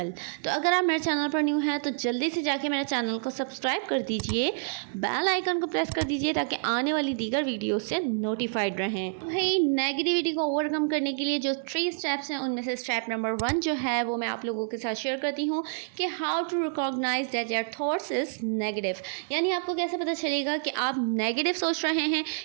तो अगर आप मेरे चैनल पर न्यू हैं तो जल्दी से जाके मेरे चैनल को सब्सक्राइब कर दीजिए, बेल आइकन को प्रेस कर दीजिए ताकि आने वाली दीगर वीडियो से नोटिफाइड रहें। भाई नेगेटिविटी को ओवरकम करने के लिए जो 3 स्टेप्स हैं उनमें से स्टेप नंबर 1 जो है वो मैं आप लोगों के साथ शेयर करती हूँ कि how to recognise that your thoughts is negative. यानी आपको कैसे पता चलेगा कि आप नेगेटिव सोच रहे हैं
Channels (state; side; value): silent; left; 58 dB below the other